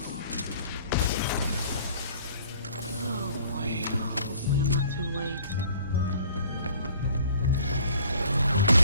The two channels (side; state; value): both; inverted; correlation -0.53